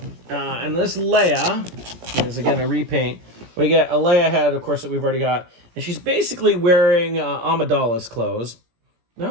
And this Leia is, again, a repaint. We get a Leia head, of course, that we've already got. And she's basically wearing Amidala's clothes.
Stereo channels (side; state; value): left; late; 17 ms